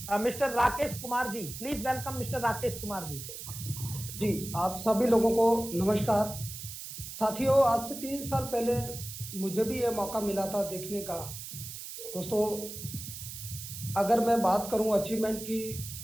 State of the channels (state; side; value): noise; right; hiss, 10 dB below the sound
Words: mister Rakesh Kumar ji. Please welcome mister Rakesh Kumar ji. जी आप सभी लोगों को नमस्कार। साथियों आज से 3 साल पहले मुझे भी ये मौका मिला था देखने का। दोस्तों अगर मैं बात करूं अचीवमेंट की